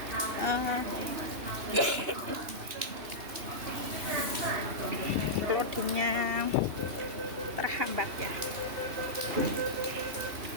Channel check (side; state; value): left; late; 2.9 ms